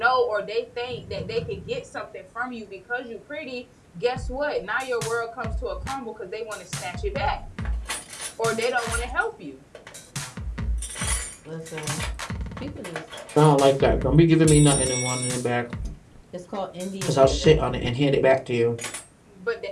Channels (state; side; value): identical; both; correlation 1.00